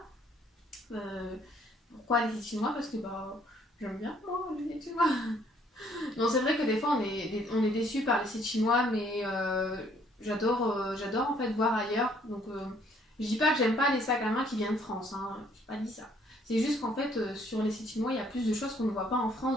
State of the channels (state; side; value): normal; both; correlation 0.64